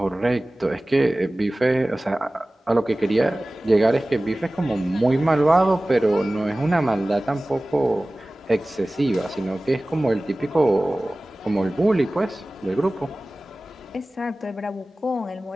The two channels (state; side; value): normal; both; correlation 0.98